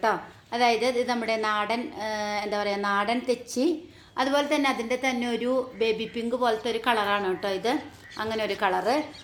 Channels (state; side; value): identical; both; correlation 1.00